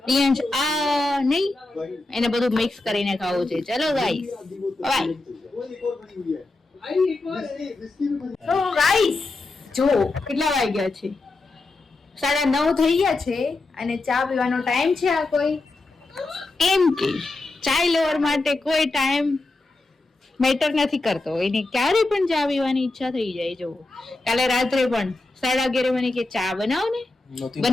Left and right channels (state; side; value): quieter; right; 3.2 dB